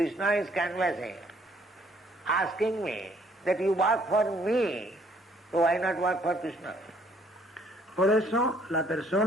is canvassing, asking me that you work for me, so why not work for Krishna? Por eso la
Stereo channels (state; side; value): normal; both; correlation 0.64